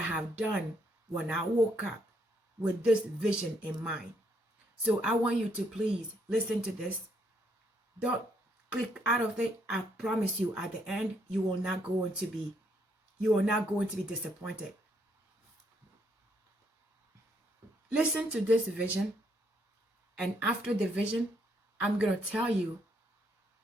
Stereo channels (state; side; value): normal; both; correlation 0.72